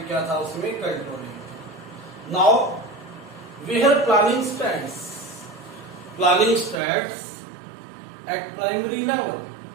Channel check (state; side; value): drops out; left; at 6.8 s